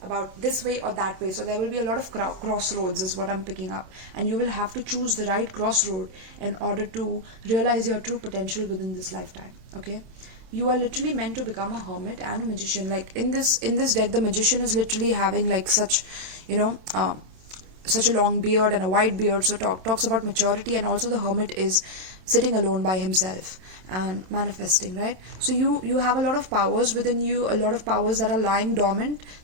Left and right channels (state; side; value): late; left; 27 ms